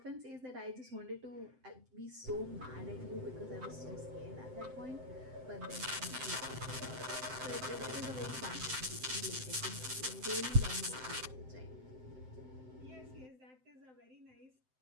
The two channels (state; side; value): late; left; 7.8 ms